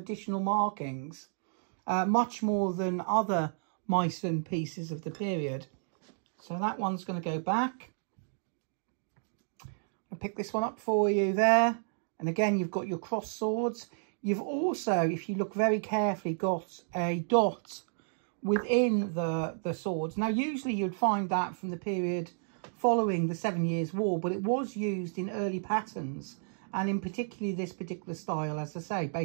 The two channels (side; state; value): left; silent; digital silence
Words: markings, much more than other Meissen pieces of the period. So that one's going to go back. I'll pick this one up for you there. And again, you've got your cross swords. You've also, if you look very carefully, got a dot within the swords. Now, usually you'd find that from the period following the 7 Years' War, but it was used in early patterns. And in particularly this particular style, as I say,